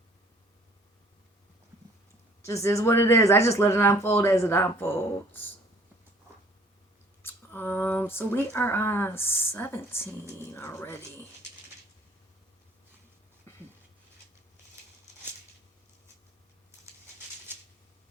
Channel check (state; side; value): normal; both; correlation 0.56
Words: Just is what it is. I just let it unfold as it unfolds. So we are on 17 already.